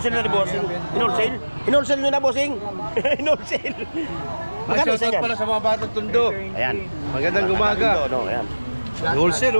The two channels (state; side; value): inverted; both; correlation -1.00